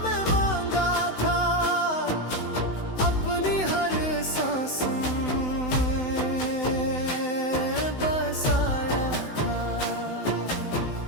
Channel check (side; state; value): right; late; 16 ms